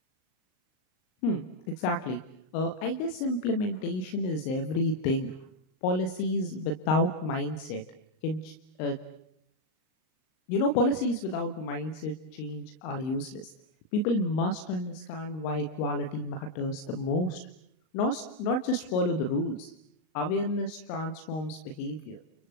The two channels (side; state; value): right; late; 38 ms